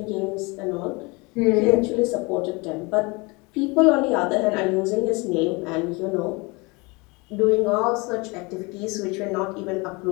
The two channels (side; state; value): right; quieter; 27.0 dB